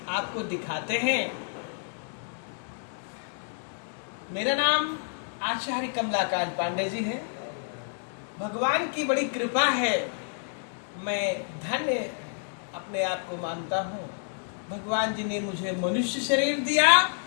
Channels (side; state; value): right; silent; digital silence